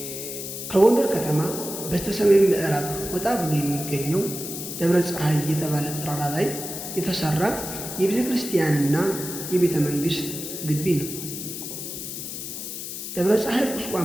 ከጎንደር ከተማ በስተሰሜን ምዕራብ ወጣ ብሎ የሚገኘው ደብረ ፀሐይ የተባለ ተራራ ላይ የተሰራ የቤተ ክርስቲያንና የቤተ መንግሥት ግቢ ነው። ደብረ ፀሐይ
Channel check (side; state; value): left; noise; hiss, 7 dB below the sound